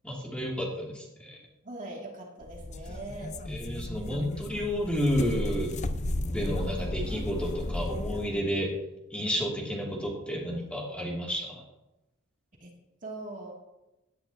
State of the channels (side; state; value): both; normal; correlation 0.72